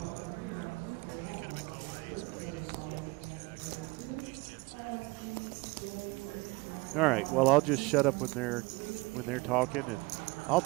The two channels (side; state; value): left; quieter; 24.5 dB